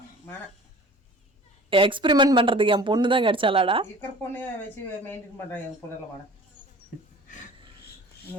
எக்ஸ்பெரிமெண்ட் பண்றதுக்கு என் பொண்ணு தான் கிடைச்சாலாடா? இருக்கிற பொண்ணே வச்சு மெயின்டைன் பண்ணுறேன் என் பொண்ணுல வாட.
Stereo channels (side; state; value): both; normal; correlation 0.44